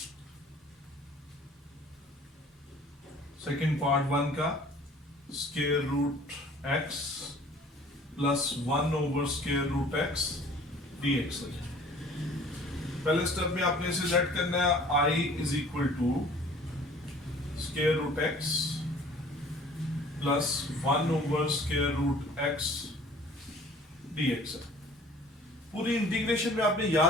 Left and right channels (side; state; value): both; normal; correlation 0.50